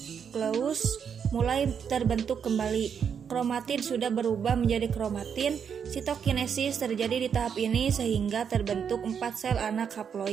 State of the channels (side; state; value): left; quieter; 7.3 dB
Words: mulai terbentuk kembali. Kromatid sudah berubah menjadi kromatin. Sitokinesis terjadi di tahap ini sehingga terbentuk 4 sel anak